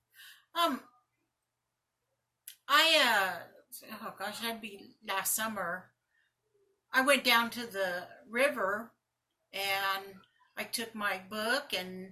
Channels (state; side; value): identical; both; correlation 1.00